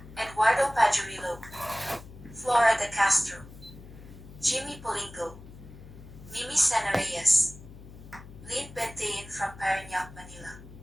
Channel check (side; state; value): left; noise; hum, 17 dB below the sound